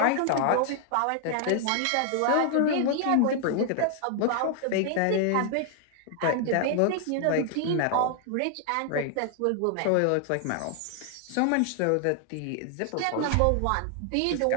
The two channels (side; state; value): both; different; correlation 0.00